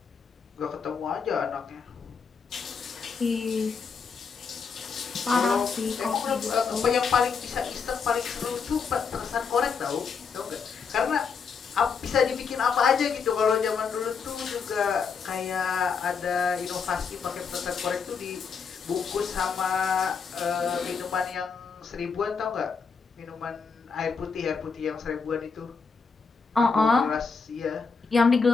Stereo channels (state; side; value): quieter; right; 5.6 dB